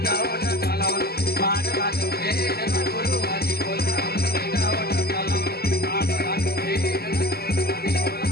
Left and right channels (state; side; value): late; right; 0.46 ms